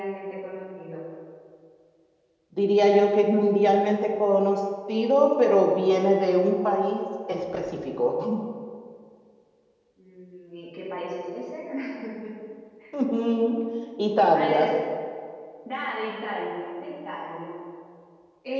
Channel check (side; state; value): both; identical; correlation 1.00